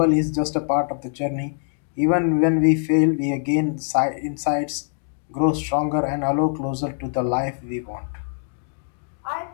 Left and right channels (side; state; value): right; silent; digital silence